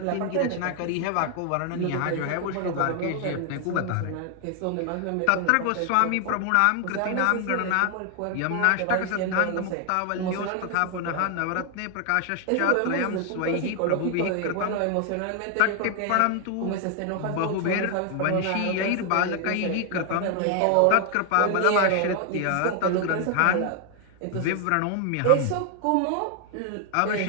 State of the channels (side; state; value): both; different; correlation 0.00